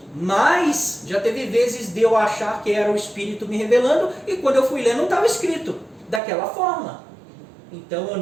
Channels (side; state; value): left; drops out; at 6.2 s